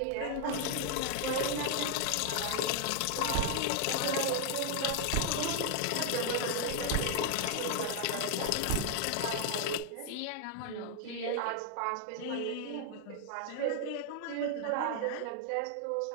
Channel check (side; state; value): both; different; correlation 0.00